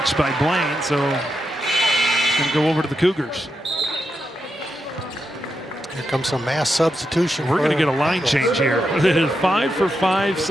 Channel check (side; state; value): both; normal; correlation 0.85